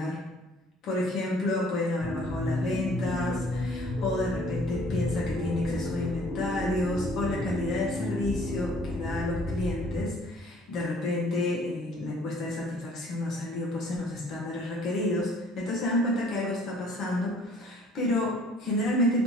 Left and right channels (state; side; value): normal; both; correlation 0.56